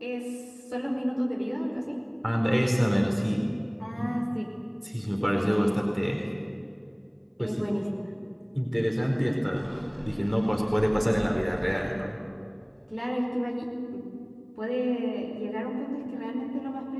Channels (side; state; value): both; identical; correlation 1.00